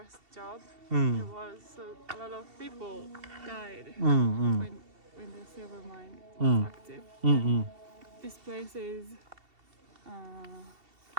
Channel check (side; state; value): left; late; 2.7 ms